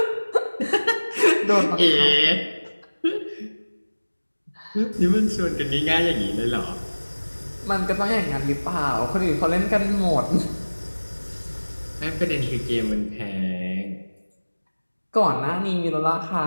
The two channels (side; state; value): both; inverted; correlation -1.00